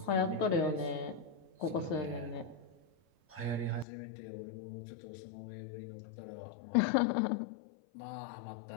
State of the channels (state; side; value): drops out; right; at 3.9 s